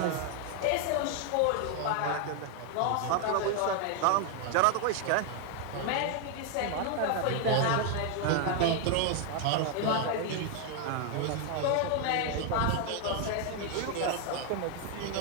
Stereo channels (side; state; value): both; different; correlation 0.01